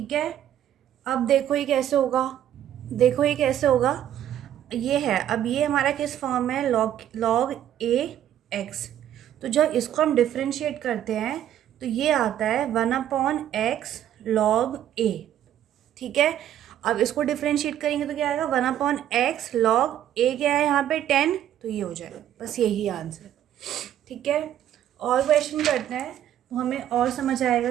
है। अब देखो ये कैसे होगा, ये है, अब ये हमारा किस फॉर्म में है, लॉग ए एक्स। तो जब इसको हम डिफ्रेंशिएट करते हैं तो ये आता है 1 अपॉन एक्स लॉग ए। ठीक है। अब इसको डिफ्रेंशिएट करेंगे तो क्या आएगा, 1 अपॉन एक्स लॉग ए, क्या है यहाँ पे 10, तो ये हो जाएगा। बस यही आंसर। ठीक है। और क्वेश्चन करते हैं तो हमें और समझ आएगा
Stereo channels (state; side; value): quieter; left; 11.2 dB